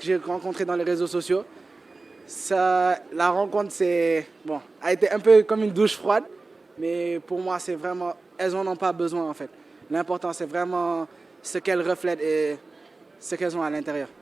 j'ai rencontrée dans les réseaux sociaux. La rencontre a été un peu comme une douche froide. Mais pour moi, c'est vraiment, elles n'en ont pas besoin en fait. L'important, c'est vraiment ce qu'elles reflètent et ce qu'elles ont à l'intérieur.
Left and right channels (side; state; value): left; quieter; 3.5 dB